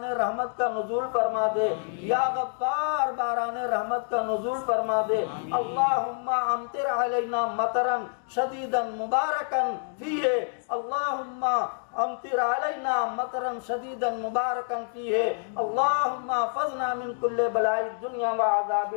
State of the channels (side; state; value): right; silent; 60 dB below the other